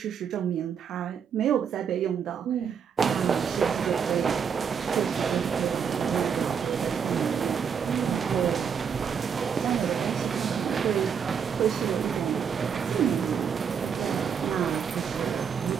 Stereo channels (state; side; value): quieter; left; 7.1 dB